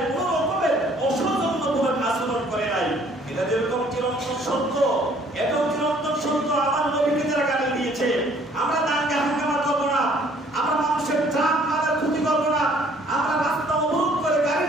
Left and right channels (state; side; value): normal; both; correlation 0.59